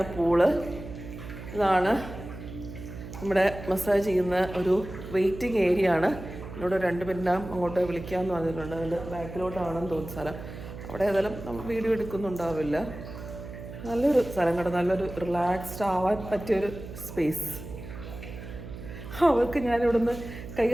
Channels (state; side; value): noise; right; hum, 12 dB below the sound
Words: പൂള്. ഇതാണ് നമ്മുടെ മസാജ് ചെയ്യുന്ന ഒരു വെയിറ്റിംഗ് ഏരിയ ആണ്. എന്നോട് 2 മിനിറ്റ് അങ്ങോട്ട് വിളിക്കാമെന്ന് പറഞ്ഞിട്ടുണ്ട്. അതിൻ്റെ ബാക്കിലോട്ടാണെന്ന് തോന്നുന്ന സ്ഥലം. അവിടെ ഏതായാലും നമ്മൾ വീഡിയോ എടുക്കുന്നുണ്ടാവില്ല. നല്ലൊരു സ്ഥലം കേട്ടോ. നല്ലൊരു റിലാക്സ്ഡ് ആവാൻ പറ്റിയൊരു സ്പേസ്. അവർക്ക് ഞാനിവിടുന്ന് കൈ